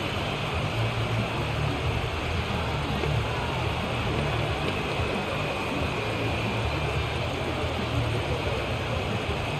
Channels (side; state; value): both; identical; correlation 1.00